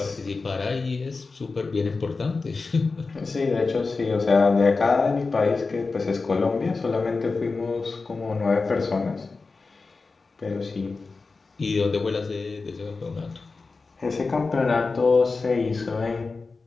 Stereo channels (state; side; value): quieter; right; 4.1 dB